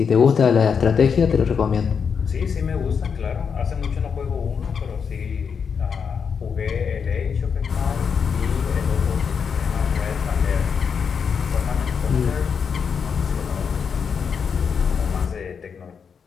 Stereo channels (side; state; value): right; quieter; 6.4 dB